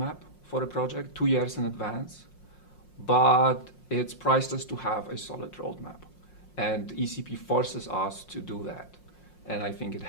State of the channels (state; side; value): late; right; 5.6 ms